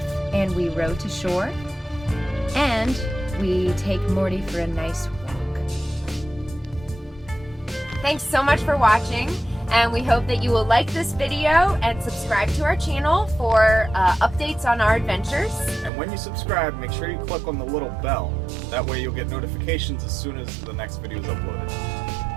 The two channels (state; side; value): drops out; left; at 15.9 s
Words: and we row to shore, and we take Morty for a nice walk. Thanks so much for watching, and we hope that you will like this video and subscribe to our channel for updates on our adventures. And when you subscribe, make sure you click on the little bell. That way you'll get notifications as soon as the next video is uploaded.